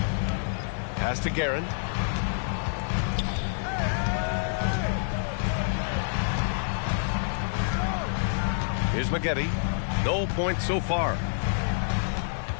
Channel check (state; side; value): silent; right; 57 dB below the other